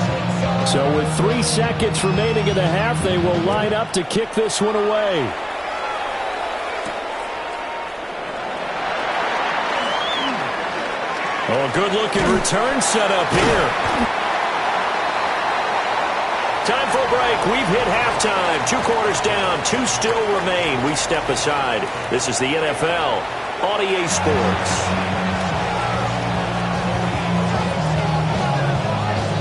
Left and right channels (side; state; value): both; identical; correlation 1.00